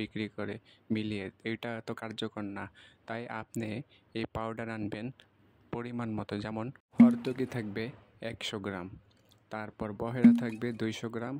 করে মিলিয়ে। এটা এত কার্যকর না, তাই আপনি এই পাউডার আনবেন পরিমাণ মতো। যেমন হরতকি থাকবে 100 গ্রাম, তারপর বহেরা থাকবে 200 গ্রাম,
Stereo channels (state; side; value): identical; both; correlation 1.00